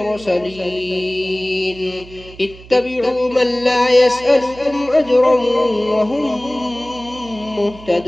اتبعوا من لا يسألكم أجرا وهم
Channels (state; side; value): noise; right; hum, 19 dB below the sound